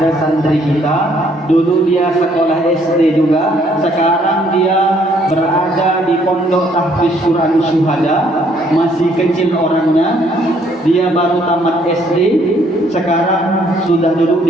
santri kita, dulu dia sekolah SD juga, sekarang dia berada di pondok tahfiz Quran Syuhada, masih kecil orangnya, dia baru tamat SD, sekarang sudah duduk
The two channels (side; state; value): both; normal; correlation 0.66